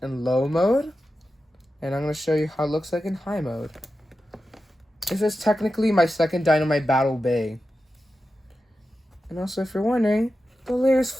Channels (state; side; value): normal; both; correlation 0.91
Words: in low mode, and I'm going to show you how it looks like in high mode. This is technically my second Dynamite Battle Bay. And also, if you're wondering, the layer is